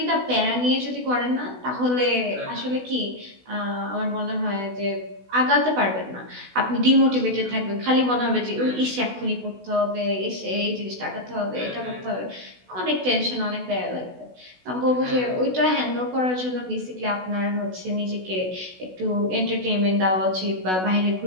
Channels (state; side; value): late; left; 16 ms